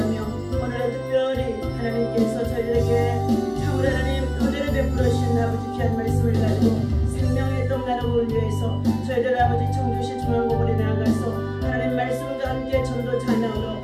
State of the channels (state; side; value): identical; both; correlation 1.00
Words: 오늘은 특별히 하나님께서 저희들에게 참으로 하나님 은혜를 베풀어 주신 아버지 귀한 말씀을 가지고 생명의 떡 나누고 위해서 저희들 아버지 청주시 중앙고을에 나아가서 하나님 말씀과 함께 전도 찬양으로